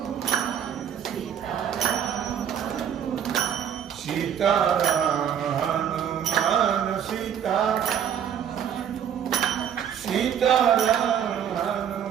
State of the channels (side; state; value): left; quieter; 8.8 dB